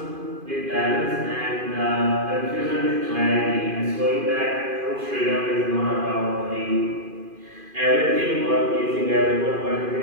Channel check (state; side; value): late; left; 2.5 ms